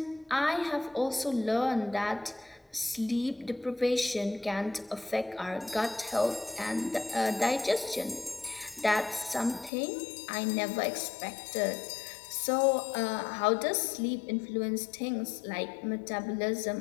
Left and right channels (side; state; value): right; drops out; at 9.7 s